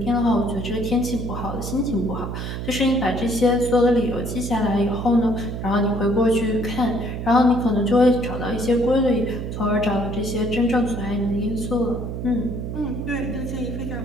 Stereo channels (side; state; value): right; noise; hum, 5 dB below the sound